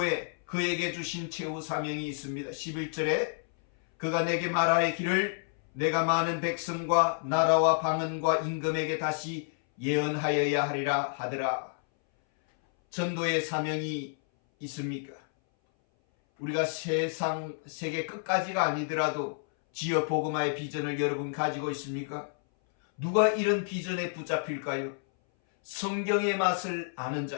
그에게 주신 최후 사명이 있습니다. 11절에 그가 내게 말하기를 내가 많은 백성과 나라와 방언과 임금에게 다시 예언하여야 하리라 하더라. 전도의 사명이 있습니까? 우리가 세계 끝까지가 아니더라도 지역 복음화의 비전을 여러분 가지고 있습니까? 누가 이런 비전에 붙잡힐까요? 성경의 맛을 아는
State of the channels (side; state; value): right; silent; 58 dB below the other